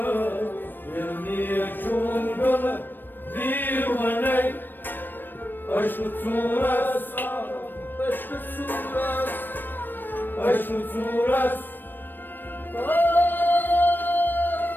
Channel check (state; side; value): late; right; 0.093 ms